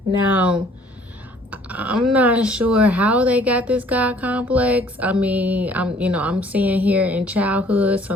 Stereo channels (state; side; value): normal; both; correlation 0.57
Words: Now, I'm not sure how they got this God complex. I mean, I'm seeing here in childhood